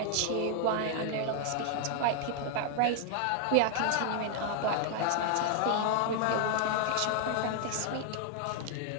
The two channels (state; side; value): different; both; correlation 0.00